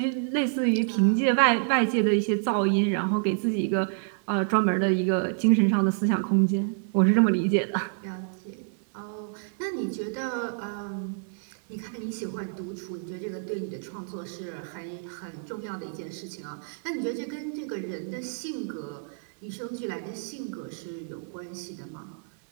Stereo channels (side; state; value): left; silent; digital silence